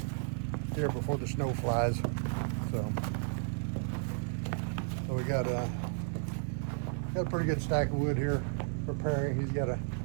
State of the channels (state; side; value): silent; left; digital silence